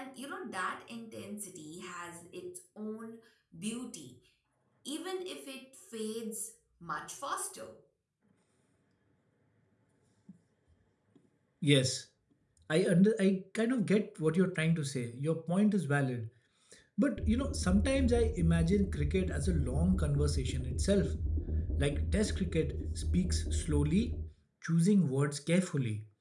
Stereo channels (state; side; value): identical; both; correlation 1.00